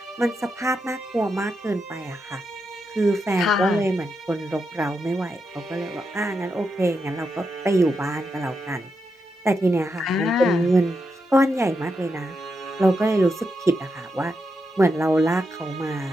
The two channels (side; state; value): both; normal; correlation 0.85